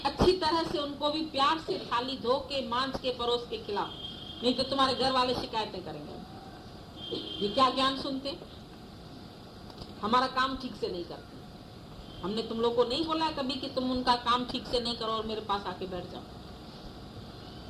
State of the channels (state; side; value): identical; both; correlation 1.00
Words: अच्छी तरह से उनको भी प्यार से थाली धो के मांझ के परोस के खिलाओ, नहीं तो तुम्हारे घर वाले शिकायतें करेंगे। ये क्या ज्ञान सुनते, हमारा काम ठीक से नहीं करते। हमने तुम लोग को नहीं बोला है कभी कि तुम उनका काम ठीक से नहीं करो और मेरे पास आके बैठ जाओ।